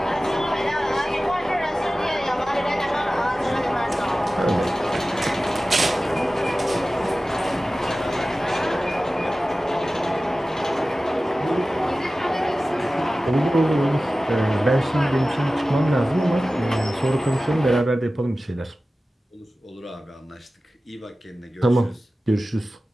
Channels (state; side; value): normal; both; correlation 0.96